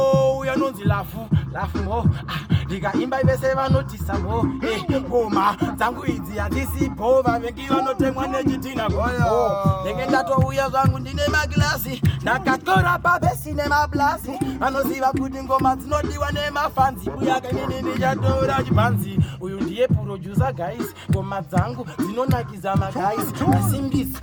uya nonzi lafu mo, ndikaimba vese vanotisa mo, ngoma dzangu idzi hadzisipo, vavengi vanotemwa nechitina goyo, ndenge ndatouya zvangu ndine maglasi, ndakatora pabesi nemablasi, vanoziva kuti ngoma dzinodiwa nemafanzi, Buyaka inini ndichatora chibhanzi, uyu ndiye producer guys, ngoma dzangu dzinonakiza magays, asimbisi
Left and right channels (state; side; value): identical; both; correlation 1.00